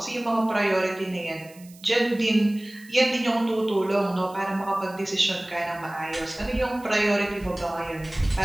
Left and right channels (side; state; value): right; noise; hiss, 24 dB below the sound